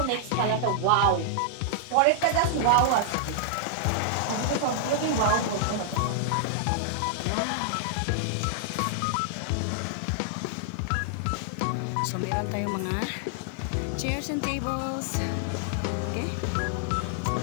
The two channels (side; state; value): both; different; correlation -0.01